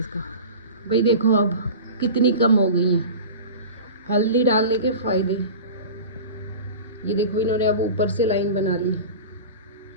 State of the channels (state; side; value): inverted; both; correlation -0.34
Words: भाई देखो अब कितनी कम हो गई है हल्दी डालने के फायदे। ये देखो इन्होंने अब ऊपर से लाइन बना ली।